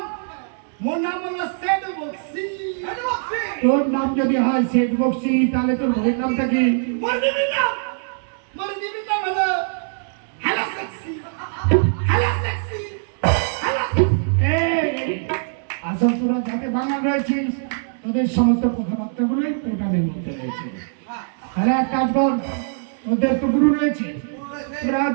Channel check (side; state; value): left; silent; 64 dB below the other